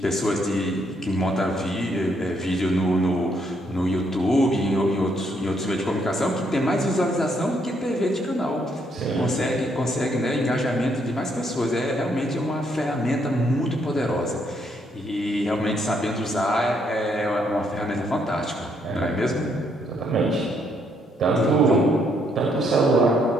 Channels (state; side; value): normal; both; correlation 0.72